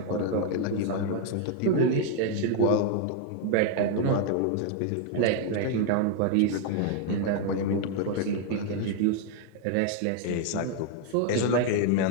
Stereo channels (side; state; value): both; different; correlation 0.01